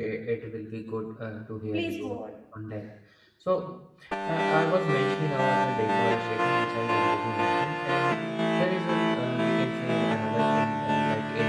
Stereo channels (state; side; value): identical; both; correlation 1.00